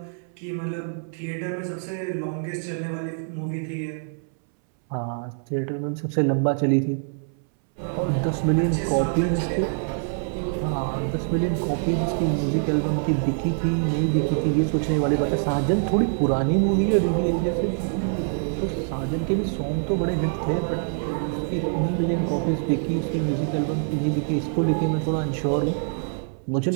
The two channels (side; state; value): left; silent; 62 dB below the other